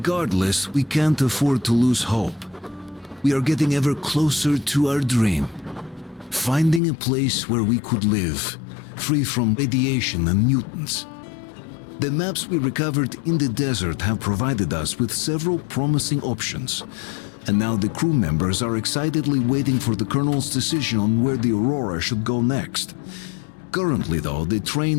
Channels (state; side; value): drops out; right; at 6.8 s